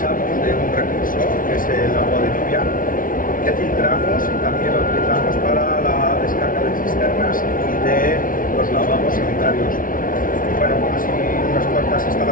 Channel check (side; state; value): right; late; 0.39 ms